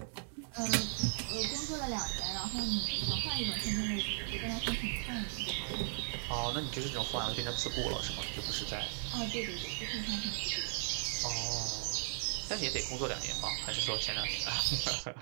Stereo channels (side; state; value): left; silent; 53 dB below the other